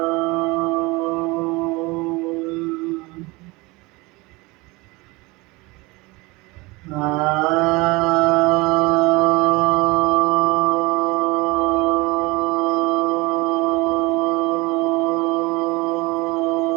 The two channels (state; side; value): quieter; left; 23.7 dB